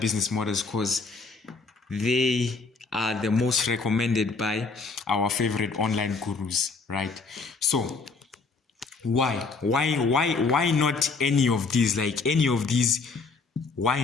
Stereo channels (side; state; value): right; quieter; 4.3 dB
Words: models? Because they are the most recommended by our favorite online gurus, right? So why not any of these? Like any of these, why